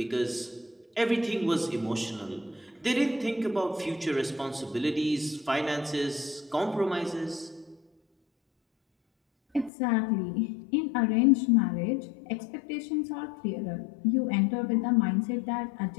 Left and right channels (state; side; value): drops out; right; at 9.7 s